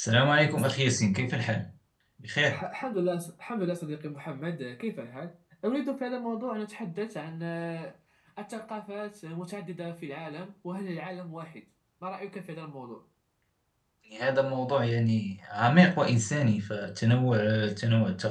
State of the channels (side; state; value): both; identical; correlation 1.00